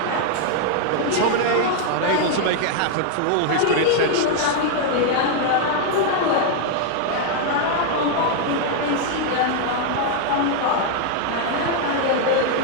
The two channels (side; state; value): both; different; correlation 0.00